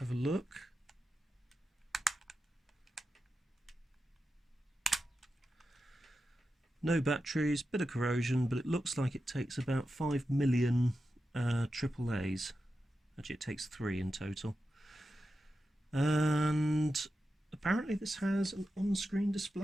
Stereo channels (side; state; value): both; normal; correlation 0.90